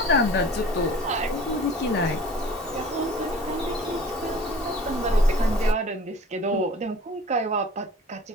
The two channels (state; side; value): normal; both; correlation 0.44